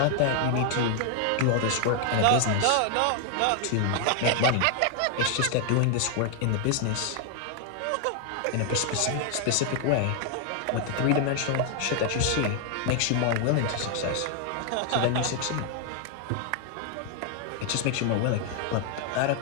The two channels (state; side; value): different; both; correlation 0.00